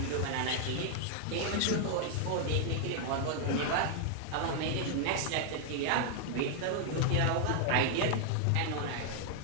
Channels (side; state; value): both; different; correlation 0.00